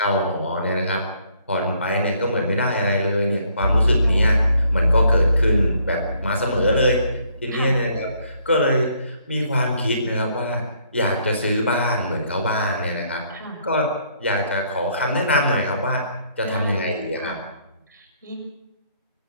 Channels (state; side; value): inverted; both; correlation -0.67